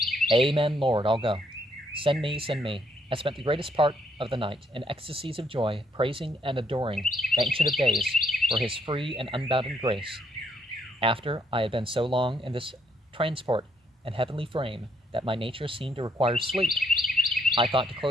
"Amen, Lord, I'll go. Send me, send me." I spent the greatest part of the night in ecstasies of joy, praising and adoring the Ancient of Days for his free and unbounded grace. After I had been so long in this transport and heavenly frame that my nature seemed to require sleep, I thought to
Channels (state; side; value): normal; both; correlation 0.71